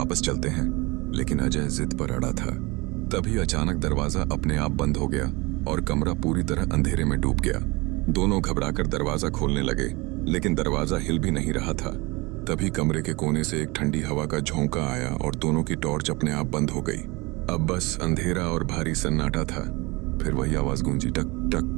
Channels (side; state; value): left; quieter; 24.6 dB